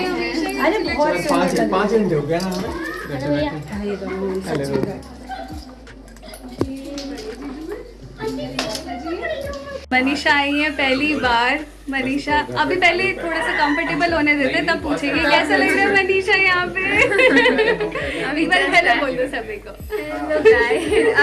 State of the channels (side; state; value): both; identical; correlation 1.00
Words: हमेशा। अरे बहुत सुंदर। 5 घंटे हो गया ना हमें। मनीषा आई है पहली बार। मनीषा अभी पहले थोड़ा सा कंफर्टेबल होने देते, तब पूछेगी कैसा लग रहा है मनीषा यहाँ पे। अभी बार पहले बोल दो सभी को।